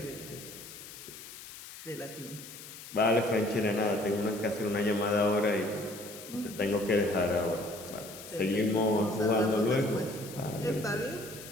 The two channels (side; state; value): left; noise; hiss, 14 dB below the sound